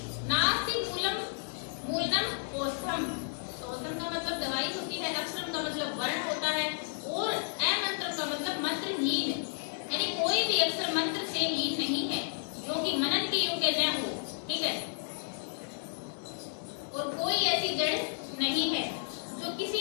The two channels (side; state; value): right; silent; digital silence